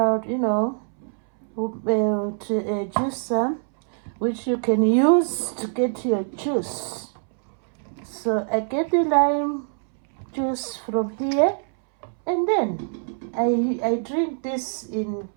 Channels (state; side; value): silent; left; 63 dB below the other